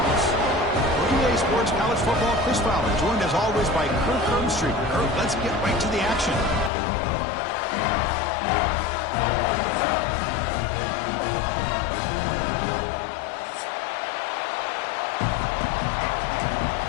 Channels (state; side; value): drops out; right; at 6.7 s